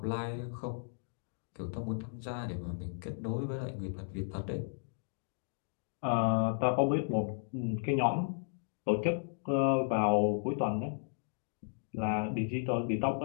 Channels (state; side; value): silent; right; digital silence